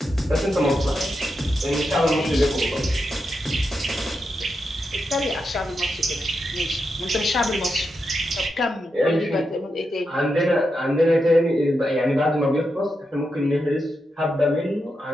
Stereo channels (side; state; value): both; normal; correlation 0.86